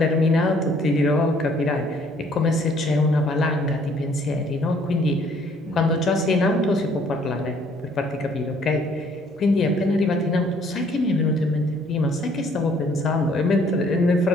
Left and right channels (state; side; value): normal; both; correlation 0.62